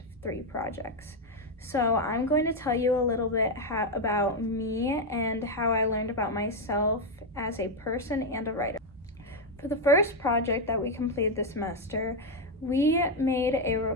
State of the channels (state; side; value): normal; both; correlation 0.04